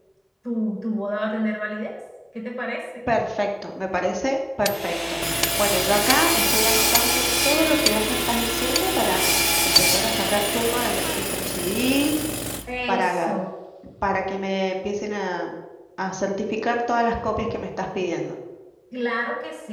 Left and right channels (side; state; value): both; identical; correlation 1.00